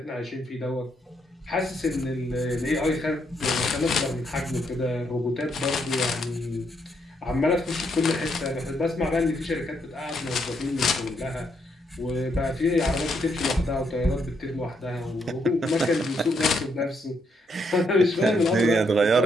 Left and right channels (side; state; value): both; normal; correlation 0.75